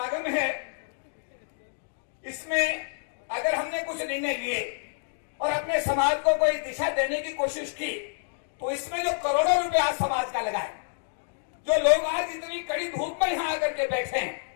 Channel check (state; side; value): silent; right; digital silence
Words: है, इसमें अगर हमने कुछ निर्णय लिए और अपने समाज को कोई दिशा देने की कोशिश की, तो इसमें जो करोड़ों रुपए आज समाज का लगा है, जो लोग आज इतनी कड़ी धूप में यहां आकर के बैठे हैं,